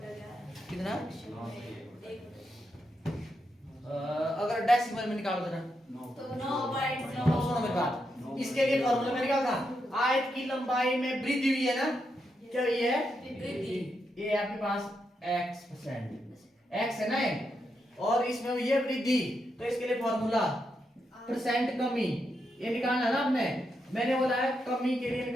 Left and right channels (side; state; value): both; normal; correlation 0.83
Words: 11 कितना? 9 से 1 अगर डेसिमल में निकालो देना तो 9.9। सुनो मेरी बात, इसके लिए फॉर्मूला में निकाल था आयत की लंबाई में वृद्धि हुई है ना, क्या हुई है? वृद्धि। ये आपके पास x% x है ना ये, और इसमें हुई है वृद्धि, तो इसके लिए फॉर्मूला परसेंट कमी ये निकालना है ना आपने। मैंने बोला है कमी के लिए